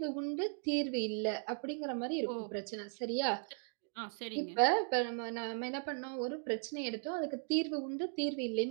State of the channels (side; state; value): left; silent; 53 dB below the other